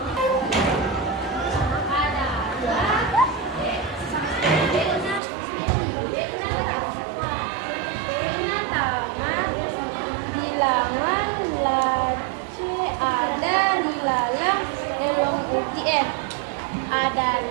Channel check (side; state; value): left; drops out; at 5.2 s